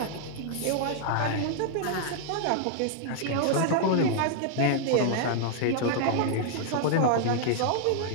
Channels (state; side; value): different; both; correlation 0.00